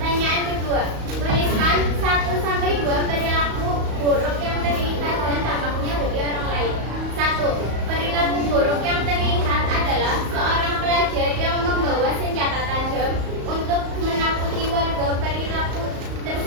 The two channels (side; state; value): left; late; 35 ms